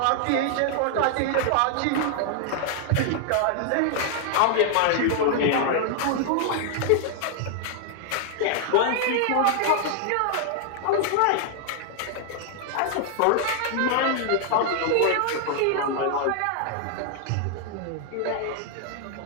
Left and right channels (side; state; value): both; different; correlation 0.00